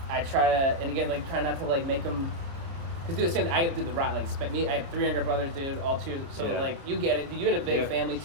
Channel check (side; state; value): left; late; 29 ms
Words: I try to, and again, try not to make them, because do the same thing. I do the right, I have 3 younger brothers, dude, all 2, so you get it, you had a big family